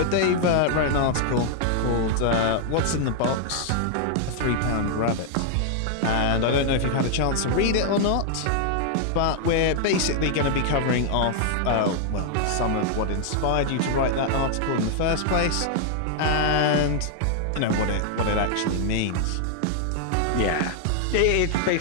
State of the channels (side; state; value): both; different; correlation 0.00